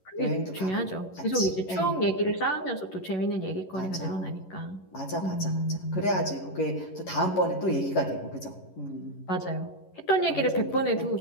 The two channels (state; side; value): late; right; 11 ms